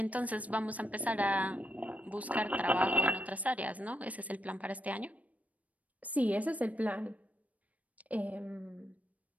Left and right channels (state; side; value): late; left; 0.070 ms